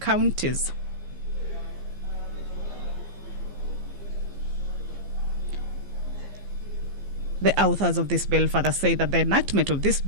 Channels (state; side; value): late; left; 15 ms